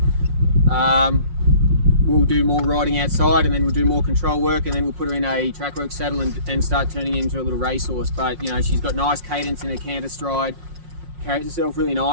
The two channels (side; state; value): left; late; 5.6 ms